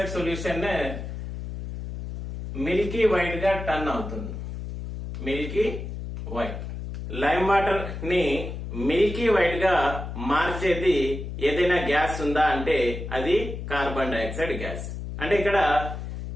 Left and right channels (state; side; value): noise; left; hum, 7 dB below the sound